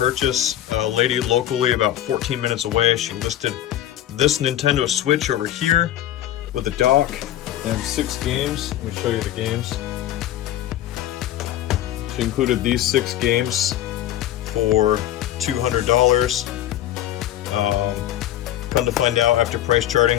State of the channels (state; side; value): quieter; right; 12.6 dB